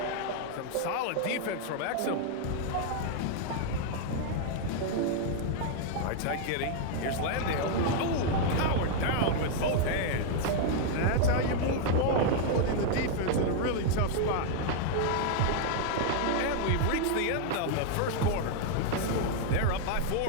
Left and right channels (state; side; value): different; both; correlation 0.00